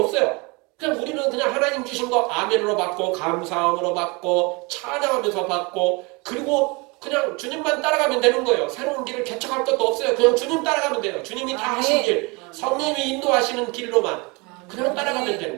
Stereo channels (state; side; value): quieter; left; 27.9 dB